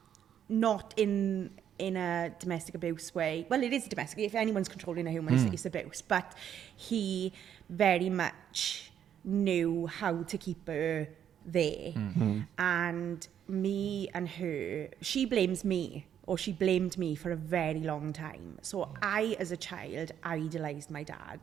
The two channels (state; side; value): quieter; left; 9.5 dB